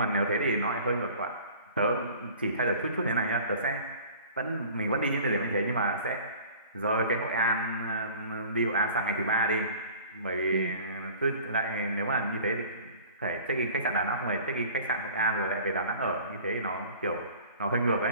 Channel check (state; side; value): inverted; both; correlation -0.45